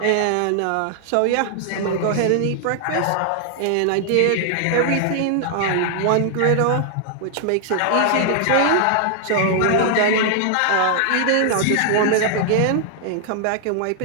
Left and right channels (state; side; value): different; both; correlation 0.00